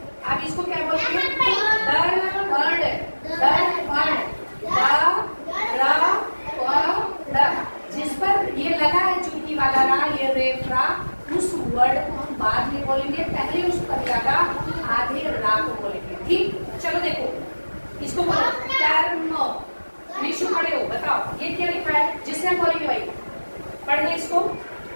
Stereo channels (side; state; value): both; inverted; correlation -1.00